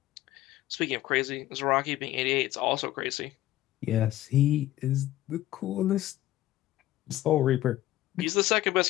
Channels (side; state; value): right; quieter; 14.9 dB